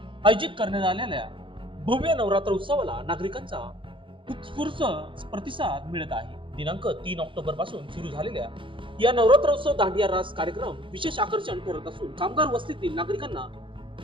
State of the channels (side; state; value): left; late; 0.25 ms